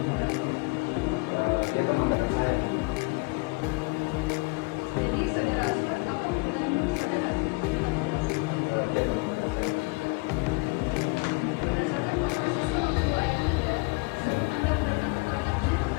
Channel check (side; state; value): right; quieter; 29.0 dB